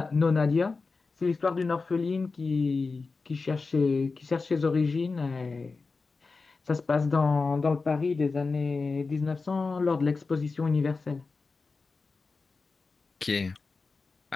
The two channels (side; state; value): right; quieter; 4.2 dB